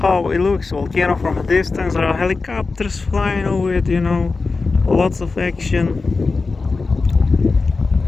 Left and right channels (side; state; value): right; quieter; 4.0 dB